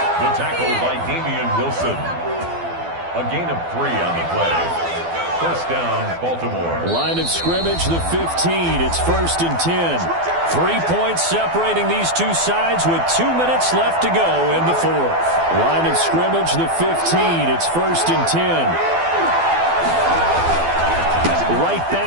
The tackle by Damian Wilson. A gain of 3 on the play. 1st down, Baltimore. Line of scrimmage, the 15. It's 1st and 10. 3 points separating these two sides with 2 minutes left to go in the 4th. Line of scrimmage, the 15. It's 1st and 10. Right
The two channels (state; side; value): late; left; 12 ms